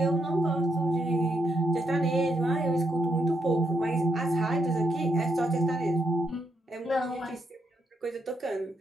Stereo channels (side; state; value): both; normal; correlation 0.79